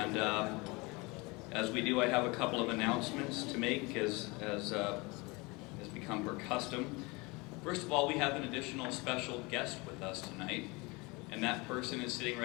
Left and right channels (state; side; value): quieter; right; 26.0 dB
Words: as we do, I have a couple of announcements to make as has become per custom. First of all, we have an additional special guest with us tonight, and that person is sitting